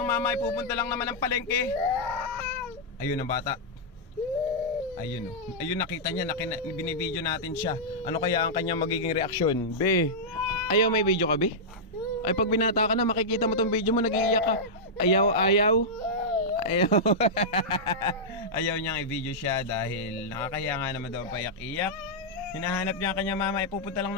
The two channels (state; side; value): normal; both; correlation -0.09